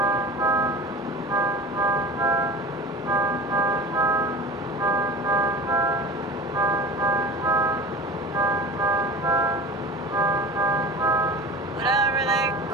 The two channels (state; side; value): normal; both; correlation 0.36